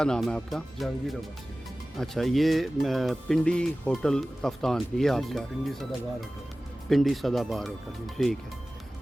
नाम है आपका? जहांगीर अब्बासी। अच्छा, ये पिंडी होटल कफ्तान ये आपका? पिंडी सदाबहार होटल। पिंडी सदाबहार होटल, ठीक है।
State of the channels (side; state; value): both; normal; correlation 0.97